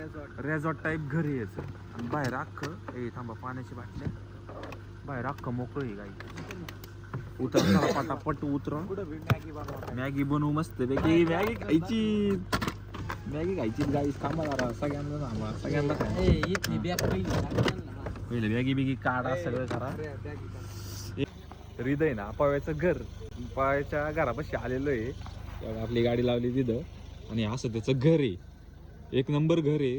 रेझॉर्ट टाईप घर आहे याचं. आणि बाहेर अख्खं ए थांबा, पाण्याची बाटल्या. बाहेर अख्खं मोकळं आहे गाई. उतर पटापट उतर. मॅगी बनवू मस्त पैकी. मॅगी खायची, मॅगी खायची गाई. थांबा जरा, सगळ्यांना थांबा, सगळ्यांना पहिले मॅगी बिगी काढा, सगळं करा. हृदय ना पाव्याचं घर, पाव्याच्या घरापाशी आलेलो आहे. आपली गाडी लावली तिथं आणि असं त्याचं घर आहे. एक नंबर घर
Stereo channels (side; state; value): both; identical; correlation 1.00